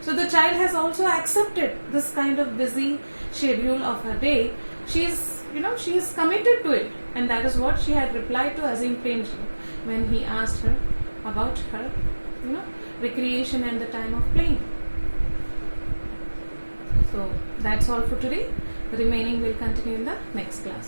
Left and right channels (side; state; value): both; inverted; correlation -1.00